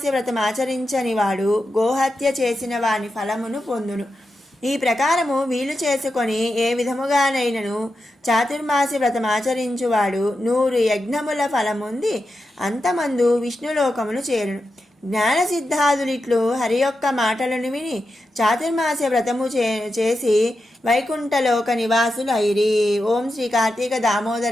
వ్రతం ఆచరించని వాడు గోహత్య చేసిన వాని ఫలమును పొందును. ఈ ప్రకారము వీలు చేసుకొని ఏ విధముగానైనను చాతుర్మాస్య వ్రతం ఆచరించువాడు 100 యజ్ఞముల ఫలముంది అంతమందు విష్ణులోకమును చేరును. జ్ఞానసిద్ధాదులిట్లు హరి యొక్క మాటలను విని చాతుర్మాస్య వ్రతము చేసి వైకుంఠలోక నివాసులు అయిరి. ఓం శ్రీ కార్తీక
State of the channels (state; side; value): normal; both; correlation 0.89